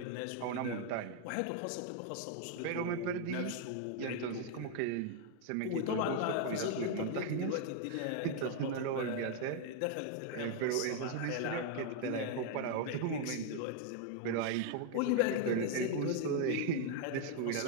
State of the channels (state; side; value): different; both; correlation 0.00